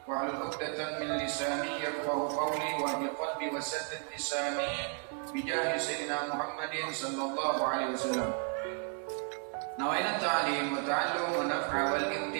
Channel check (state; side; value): quieter; left; 39.9 dB